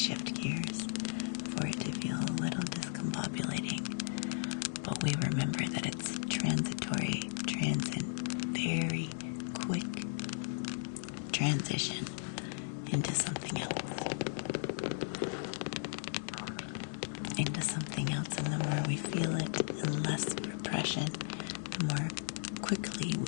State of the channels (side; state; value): right; silent; digital silence